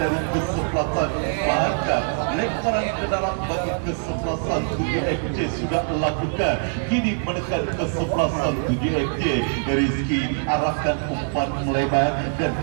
kesebelasan bahkan lemparan ke dalam bagi kesebelasan 7FJ sudah lakukan. Kini menekan kesebelasan 7FJ. Rizky arahkan umpan melebar dan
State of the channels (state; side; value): silent; left; digital silence